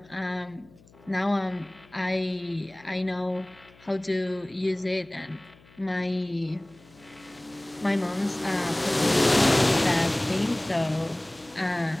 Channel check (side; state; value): left; noise; hum, 26 dB below the sound